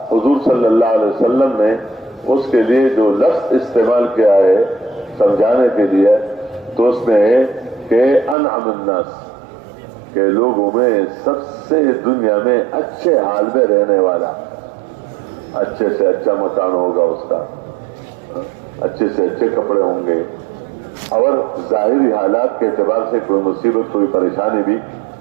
حضور صلی اللہ علیہ وسلم نے اس کے لیے جو لفظ استعمال کیا ہے سمجھانے کے لیے، تو اس میں ہے کہ انعم الناس، کہ لوگوں میں سب سے دنیا میں اچھے حال میں رہنے والا، اچھے سے اچھا مکان ہوگا اس کا، اچھے سے اچھے کپڑے ہوں گے، اور ظاہری حالات کے اعتبار سے کوئی مصیبت کوئی پریشانی بھی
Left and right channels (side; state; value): left; drops out; at 8.3 s